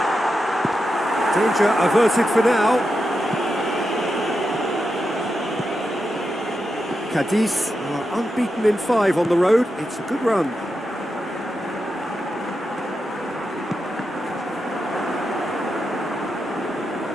Danger averted for now. Cadiz are unbeaten in 5 on the road. It's a good run.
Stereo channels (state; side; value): normal; both; correlation 0.88